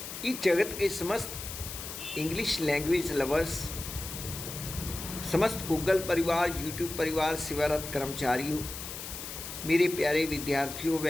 इस जगत के समस्त इंग्लिश लैंग्वेज लवर्स, समस्त गूगल परिवार, यूट्यूब परिवार, सेवारत कर्मचारियों, मेरे प्यारे विद्यार्थियों व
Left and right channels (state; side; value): noise; left; hiss, 9 dB below the sound